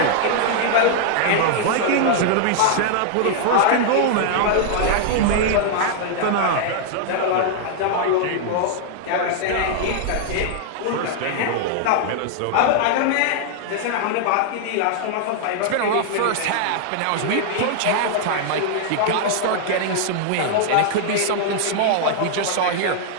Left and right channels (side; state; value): both; different; correlation -0.01